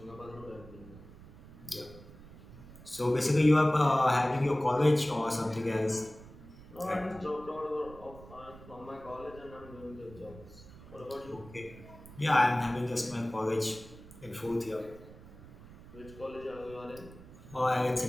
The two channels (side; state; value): right; noise; rumble, 18 dB below the sound